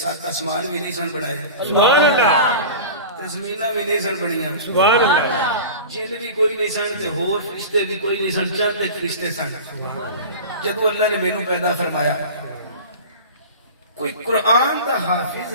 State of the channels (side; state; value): both; inverted; correlation -0.34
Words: آسمان بھی نہیں سن بنائے سبحان اللہ زمیناں بھی نہیں سن بنیاں سبحان اللہ جن بھی کوئی نہیں سن تے ہور فرشتے بھی کوئی نہیں سن چند فرشتے سن جدوں اللہ نے مینوں پیدا فرمایا کوئی قرآن دا حافظ